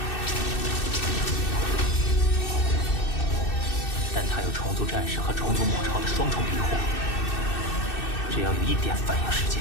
但她有虫族战士和虫族母巢的双重庇护，只要有一点反应时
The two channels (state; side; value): late; right; 2.6 ms